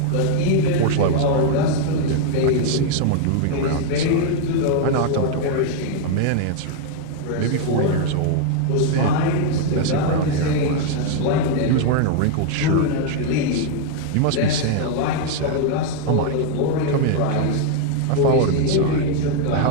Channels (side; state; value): both; different; correlation 0.00